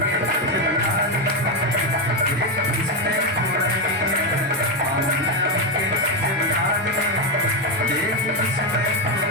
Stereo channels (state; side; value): normal; both; correlation 0.07